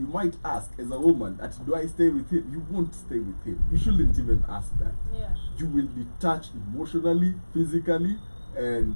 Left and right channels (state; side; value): inverted; both; correlation -1.00